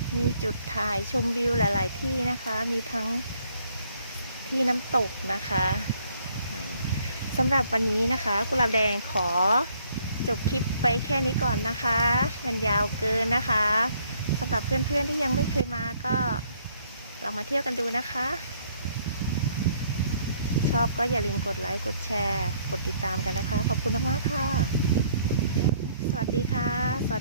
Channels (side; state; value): both; inverted; correlation -0.65